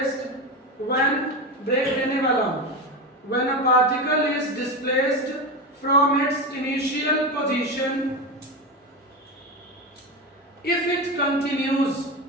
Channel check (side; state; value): both; normal; correlation 0.19